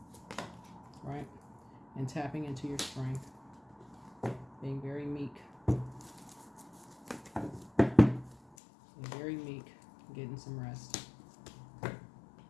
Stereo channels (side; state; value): right; drops out; at 8.4 s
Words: right? And tapping into your strength. Being very meek. Being very meek. Getting some rest.